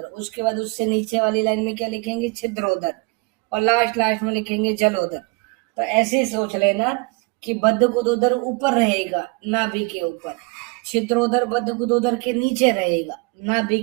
उसके बाद उससे नीचे वाली लाइन में क्या लिखेंगे? छिद्रोदर, और लास्ट में लिखेंगे जलोदर। तो ऐसे ही सोच लेना कि बद्ध गुदोदर ऊपर रहेगा नाभि के ऊपर, छिद्रोदर बद्ध गुदोदर के नीचे रहेगा नाभि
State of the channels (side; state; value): left; quieter; 29.0 dB